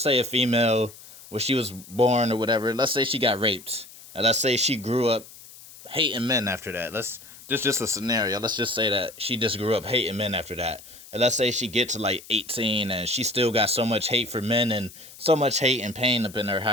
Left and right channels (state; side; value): noise; left; hiss, 19 dB below the sound